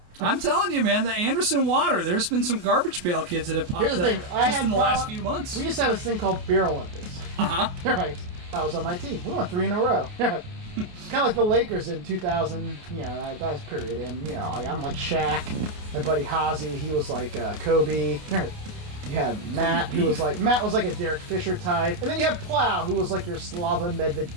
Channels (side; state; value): left; late; 28 ms